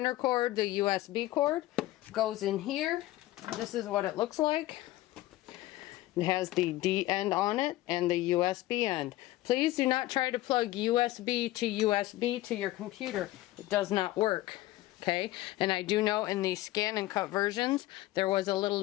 cord, the USB cord goes in here. This is what it looks like. It has the D end on it and the USB end. Please do not try to plug USB to your computer. It does not work. Okay, and I do know in the ScanNCut versions there was a little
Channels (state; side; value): quieter; right; 16.7 dB